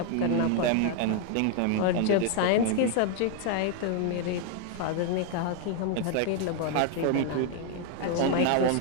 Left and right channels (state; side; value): different; both; correlation 0.00